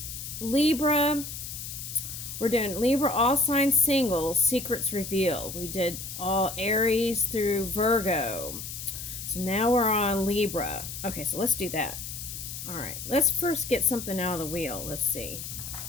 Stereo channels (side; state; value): left; noise; hiss, 8 dB below the sound